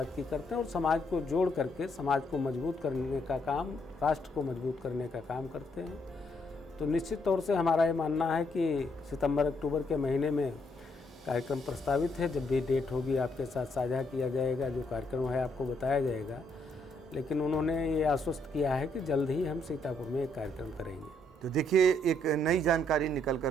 की करते हैं और समाज को जोड़ करके समाज को मजबूत करने का काम, राष्ट्र को मजबूत करने का काम करते हैं। तो निश्चित तौर से हमारा ये मानना है कि सितंबर अक्टूबर के महीने में कार्यक्रम प्रस्तावित है। जब भी डेट होगी आपके साथ साझा किया जाएगा, जो कार्यक्रम है आपको बताया जाएगा। लेकिन उन्होंने ये आश्वस्त किया है कि जल्द ही हम सीतापुर में एक कार्यक्रम करेंगे। तो देखिए, एक नई जानकारी निकल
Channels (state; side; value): normal; both; correlation 0.73